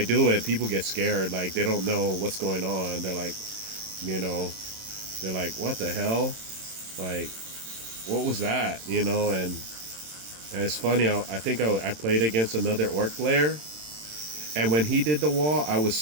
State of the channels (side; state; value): left; late; 27 ms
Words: do it, people get scared, like they don't know what's going on. They're like, what the hell? Like, what was that? And it's funny, I think I played against another orc player, and when he did the wall, I was